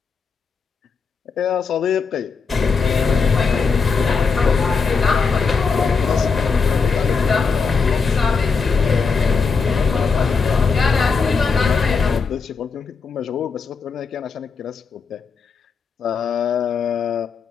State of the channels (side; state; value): right; quieter; 5.1 dB